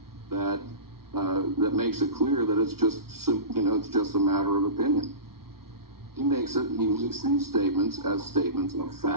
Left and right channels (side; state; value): left; late; 0.94 ms